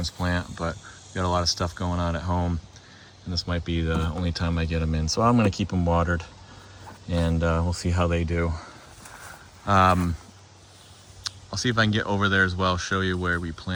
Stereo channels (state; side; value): identical; both; correlation 1.00